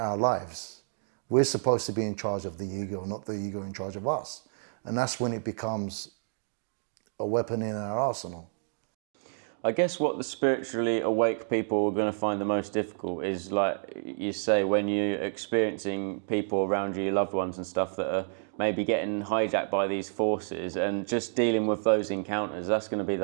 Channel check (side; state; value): left; silent; digital silence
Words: lives. We're supposed to be in charge of the ego, not the ego in charge of us. And that's when it becomes a weapon in our arsenal. I guess what the spiritually awake people are going to find the most difficult is, like you say, when you're experiencing people around you, your loved ones and stuff, that are maybe getting hijacked by these forces, and just dealing with those encounters. That's going to be